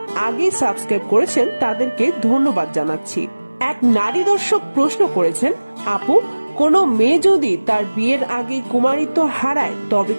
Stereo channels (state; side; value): inverted; both; correlation -1.00